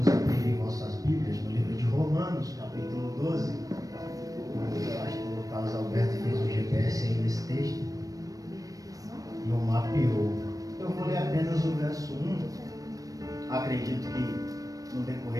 a abrirem vossas Bíblias no livro de Romanos, capítulo 12. O pastor Carlos Alberto fez um GPS aí nesse texto e o mapeou. Eu vou ler apenas o verso 1. Acredito que no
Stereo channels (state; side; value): late; left; 0.17 ms